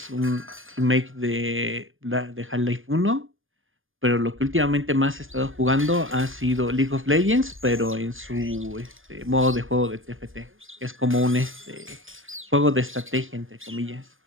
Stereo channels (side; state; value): left; late; 0.59 ms